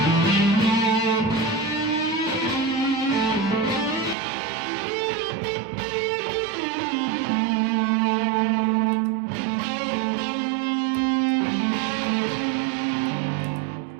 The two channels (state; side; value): drops out; left; at 4.2 s